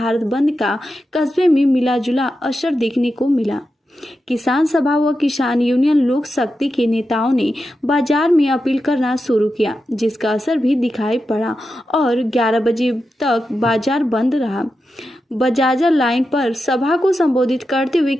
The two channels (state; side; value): normal; both; correlation 0.89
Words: बंद का कस्बे में मिलाजुला असर देखने को मिला। किसान सभा व किसान यूनियन लोक शक्ति के नेताओं ने बाजार में अपील करना शुरू किया, जिसका असर भी दिखाई पड़ा और 11 बजे तक बाजार बंद रहा। बजाजा लाइन पर सभा को संबोधित करते हुए